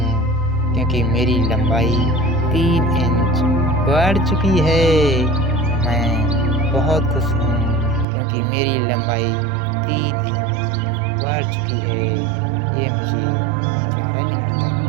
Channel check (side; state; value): left; drops out; at 8.1 s